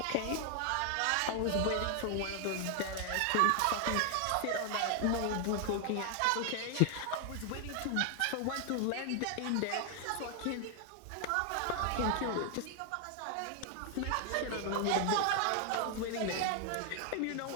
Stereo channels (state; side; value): different; both; correlation 0.00